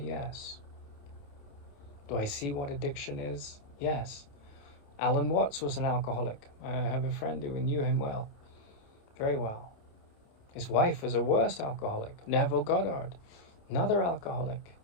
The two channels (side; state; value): right; late; 28 ms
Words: Yes. Do I see what addiction is? Yes. Alan Watts was an alcoholic. I have a friend who knew him well, very well. His wife was a worse alcoholic. Neville Goddard, another alcoholic.